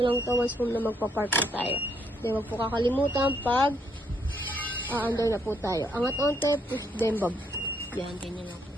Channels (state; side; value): normal; both; correlation 0.72